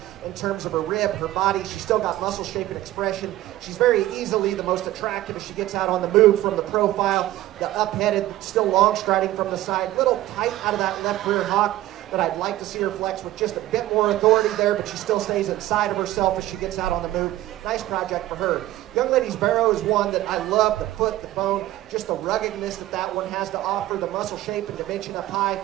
in terms of her rib, her body. She's still got muscle shape and expression. She's very easily the most attractive as she gets out on the move from the profile. The up-headed, still long striding from the side. Little tight out of that left rear hock that I'd like to see her flex with just a bit more authority there, but she still stays inside of herself as she gets out on the move. Nice project for her. Young lady's barrow is one that I love. The foot, the bone, just the ruggedness that one has to offer, the muscle shape and dimension up high,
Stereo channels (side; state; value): left; quieter; 15.3 dB